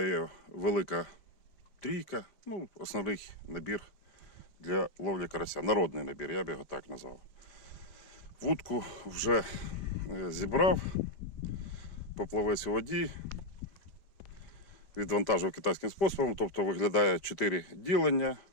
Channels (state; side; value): late; right; 5.1 ms